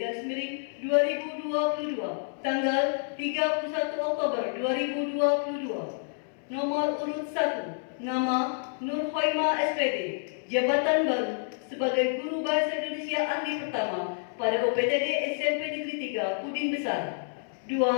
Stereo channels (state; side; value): silent; right; 59 dB below the other